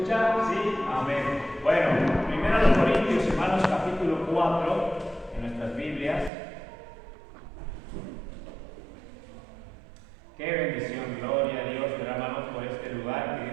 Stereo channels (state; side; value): drops out; left; at 6.3 s